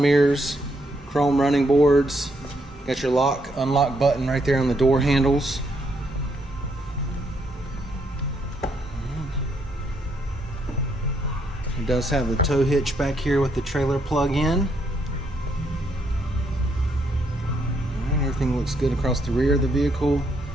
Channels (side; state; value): both; normal; correlation 0.75